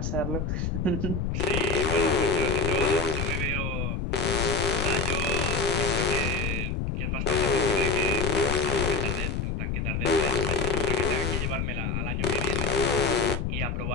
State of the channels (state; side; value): noise; left; rumble, 1 dB below the sound